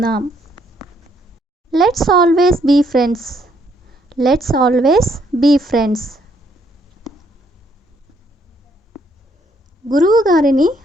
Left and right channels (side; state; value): both; normal; correlation 0.70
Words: Let's always be friends. Let's always be friends. గురువు గారిని